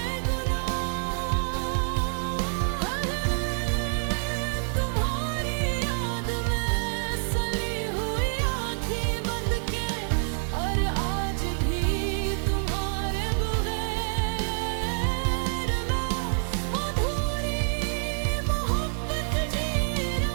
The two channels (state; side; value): silent; left; digital silence